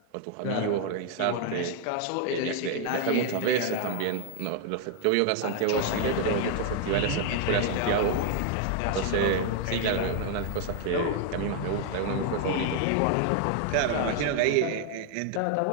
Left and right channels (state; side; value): different; both; correlation 0.00